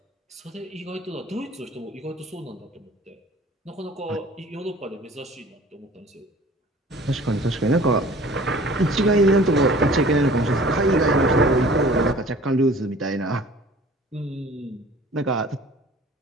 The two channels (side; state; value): both; normal; correlation 0.48